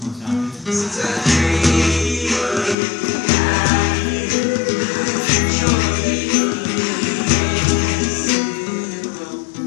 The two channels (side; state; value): right; drops out; at 2.8 s